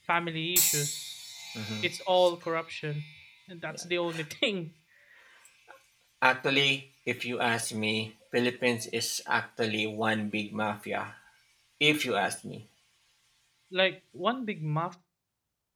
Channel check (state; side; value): identical; both; correlation 1.00